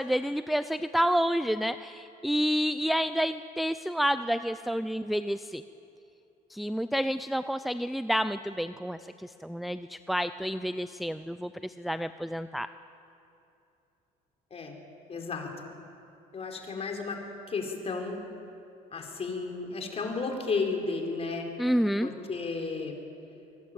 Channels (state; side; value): normal; both; correlation 0.88